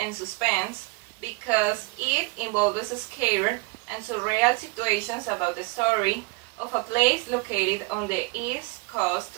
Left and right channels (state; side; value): quieter; left; 25.1 dB